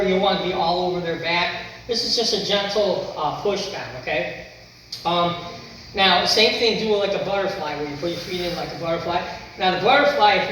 You want to be all over their back. This is just a gentle push down, okay? Now, same thing, do it like a butterfly, where you put your feet in like a butterfly. Now, the butterfly, if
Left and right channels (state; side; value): identical; both; correlation 1.00